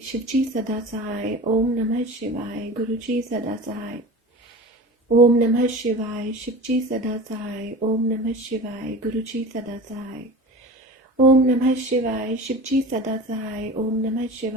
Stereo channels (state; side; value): normal; both; correlation 0.35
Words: शिव जी सदा सहाय। ओम नमः शिवाय, गुरु जी सदा सहाय। ओम नमः शिवाय, शिव जी सदा सहाय। ओम नमः शिवाय, गुरु जी सदा सहाय। ओम नमः शिवाय, शिव जी सदा सहाय। ओम नमः